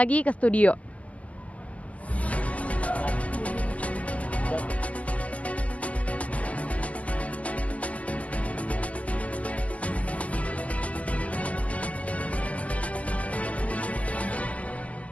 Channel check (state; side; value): late; right; 0.066 ms